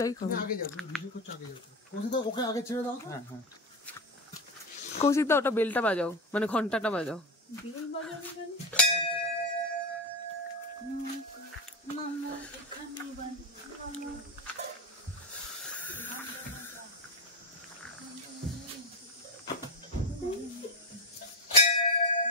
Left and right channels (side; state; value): both; normal; correlation 0.16